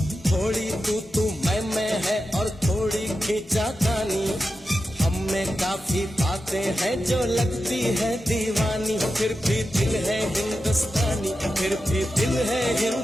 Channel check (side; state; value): both; normal; correlation 0.91